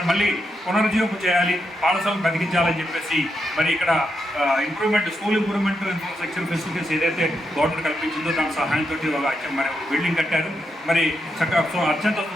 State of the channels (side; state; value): both; normal; correlation 0.83